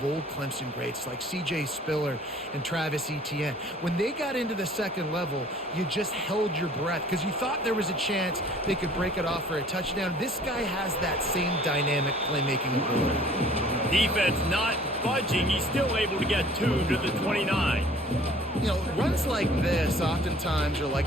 old Clemson greats like C.J. Spiller and Travis Etienne. When they got into the second level, you just held your breath because you thought there was a chance they could break it off for a touchdown. This guy has that same dynamic playmaking ability. Defense not budging. He's still able to get 2 to the 29. You know, runs like this oftentimes are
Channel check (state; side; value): normal; both; correlation 0.52